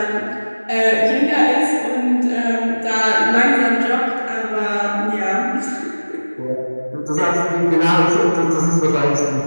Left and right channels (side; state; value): both; inverted; correlation -1.00